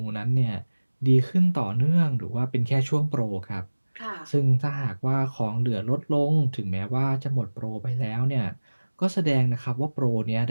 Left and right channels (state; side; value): inverted; both; correlation -1.00